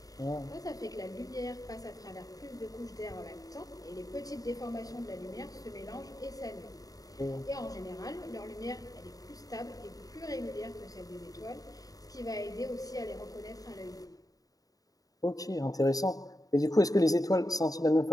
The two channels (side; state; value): right; late; 0.18 ms